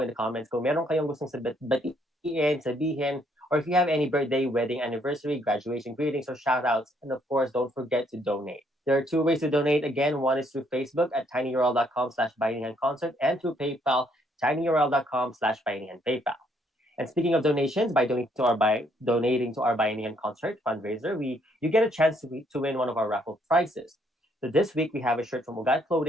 the comments kung meron kayong gustong batiin, sabihin, or if you have any birthday, wedding, anniversary, graduation greetings, or shoutouts. And of course, don't forget to donate. There are two ways to donate. Again, one is through Facebook at tinyurl.com/bayanihanconcert and through PayPal, tinyurl.com/bayanihanpaypal. And speaking of donations, by donating to our Bayanihan concert fundraiser, you get a chance to win one of our raffle prizes. So this week we have a shirt from Ugat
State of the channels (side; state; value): both; normal; correlation 0.69